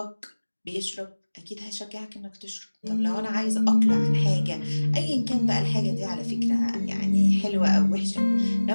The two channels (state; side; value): inverted; both; correlation -1.00